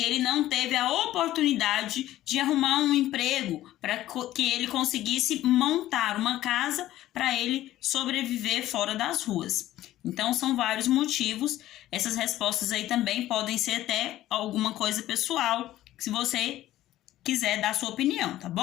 ele não teve a oportunidade de arrumar um emprego para que ele conseguisse montar uma casa para ele sobreviver fora das ruas. Então, são vários motivos. Essas respostas aí também podem ser até alguma coisa pessoal, se você quiser dar sua opinião, tá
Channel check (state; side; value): quieter; right; 14.4 dB